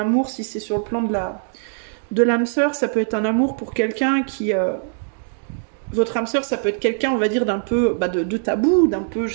si c'est sur le plan de l'âme sœur, ça peut être un amour pour quelqu'un qui... votre âme sœur, ça peut être quelqu'un, on va dire, d'un peu de tabou, d'un peu,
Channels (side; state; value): left; silent; digital silence